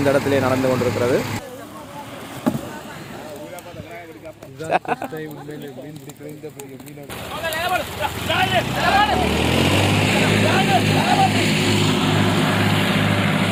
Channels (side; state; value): both; identical; correlation 1.00